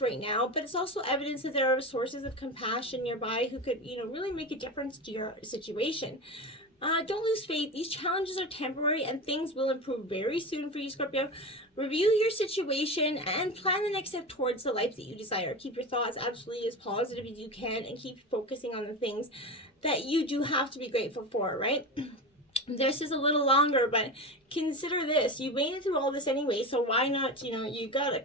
right now, but it's also evidence that there are sources of compassion nearby who could, you know, really make a difference to your situation. Don't lose faith. These challenges are temporary and things will improve very soon for you, Scorpio. Review your situation and plan the next step towards the life that you desire. Keep your thoughts absolutely as positive as you can and keep focusing on the things that you do have to be grateful for, right? This is a little longer, but consider this. You made it through all this anyway, so why not, you know, you got a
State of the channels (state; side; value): normal; both; correlation 0.25